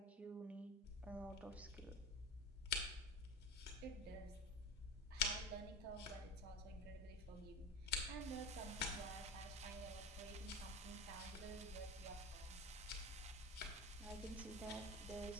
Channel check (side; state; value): both; normal; correlation 0.27